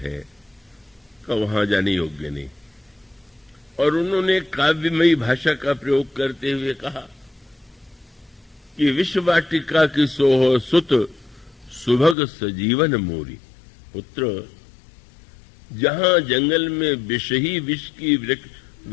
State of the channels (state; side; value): drops out; right; at 12.2 s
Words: का वहां जाने योग्य नहीं। और उन्होंने काव्यमयी भाषा का प्रयोग करते हुए कहा कि विश्ववाटिका की सोह सुत सुभग सजीवन मोरी। पुत्र, जहां जंगल में विष ही विष की